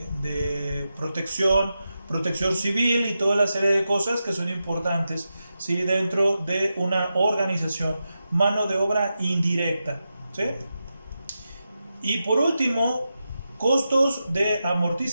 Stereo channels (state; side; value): inverted; both; correlation -0.89